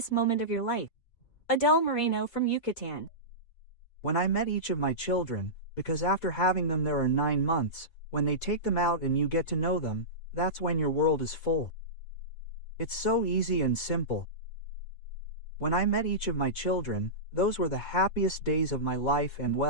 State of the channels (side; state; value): right; late; 4.3 ms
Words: moment of your life? Adele Moreno from Yucatan. When I met each of my children, because after having them there are 9 months, when they take them out and you get to know them, that's when your world is full. It's so easy and simple. When I met each of my children, those were the happiest days of my life and